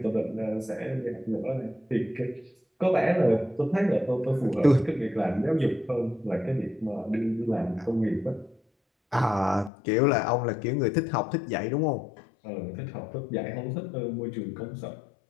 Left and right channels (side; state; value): right; drops out; at 9.7 s